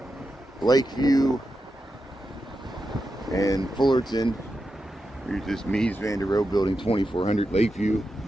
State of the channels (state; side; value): normal; both; correlation 0.89